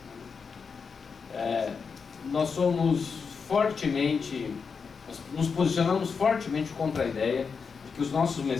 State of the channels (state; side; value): quieter; right; 5.5 dB